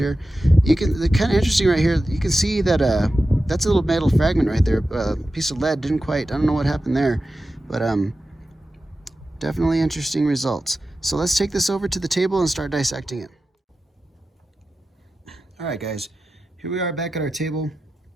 You can, the kind of interesting right here, you can see that that's a little metal fragment right there. A piece of lead didn't quite, I don't know what happened there, but definitely interesting results. So let's take this over to the table and start dissecting it. All right guys, here we are back at our table,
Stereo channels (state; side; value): normal; both; correlation 0.93